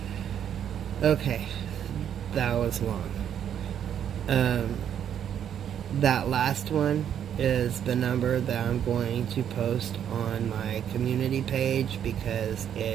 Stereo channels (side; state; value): left; quieter; 9.3 dB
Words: Okay, that was long. That last one is the number that I'm going to post on my community page, because